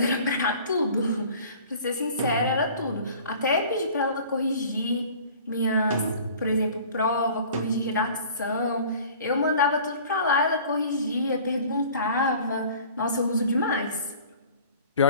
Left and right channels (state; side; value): inverted; both; correlation -0.47